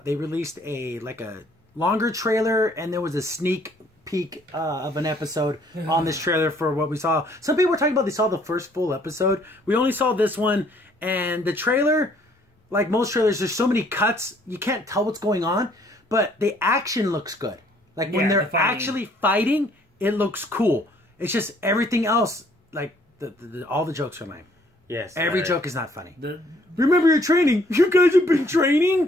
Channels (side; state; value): both; normal; correlation 0.62